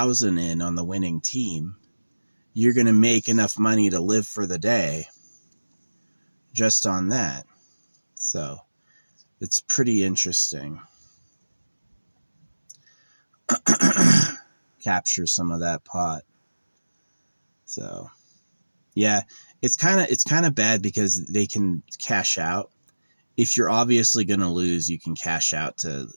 in on the winning team, you're going to make enough money to live for the day just on that. So it's pretty interesting. Capture some of that pot. So yeah, it's kind of bad because they can cash out. If you're obviously going to lose, you can cash out to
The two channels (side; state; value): both; inverted; correlation -1.00